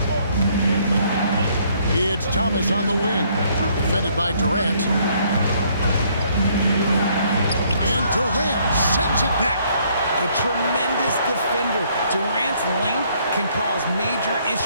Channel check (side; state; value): both; inverted; correlation -0.66